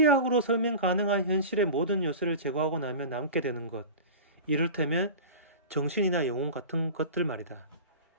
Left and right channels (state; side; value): inverted; both; correlation -0.33